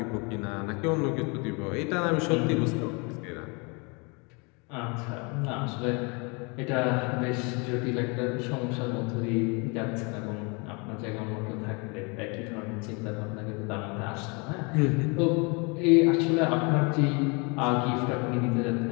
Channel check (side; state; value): right; quieter; 31.2 dB